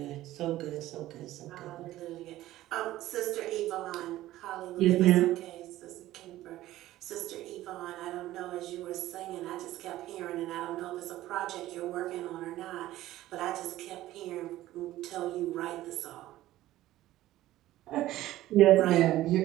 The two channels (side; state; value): left; quieter; 15.2 dB